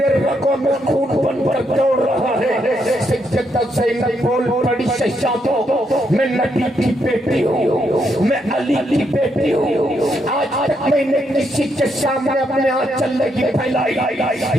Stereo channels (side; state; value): both; normal; correlation 0.77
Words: رگوں میں خون بن کر دوڑ رہا ہے سیدہ زینب بول پڑی شہزادو میں نبی کی بیٹی ہوں میں علی کی بیٹی ہوں آج تک میں نے کسی کے سامنے اپنے آنچل نہیں پھیلائی